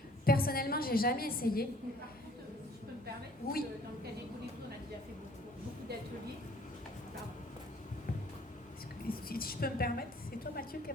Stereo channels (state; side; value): normal; both; correlation 0.55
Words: Personnellement, j'ai jamais essayé. me permettre, Oui. dans le cas des colibris, on a déjà fait beaucoup d'ateliers. Pardon. Si je peux me permettre, c'est toi Mathieu qui